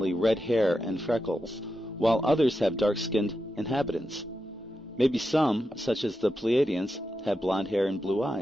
red hair and freckles, while others have dark-skinned inhabitants. Maybe some, such as the Pleiadians, have blonde hair and blue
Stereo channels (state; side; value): normal; both; correlation 0.88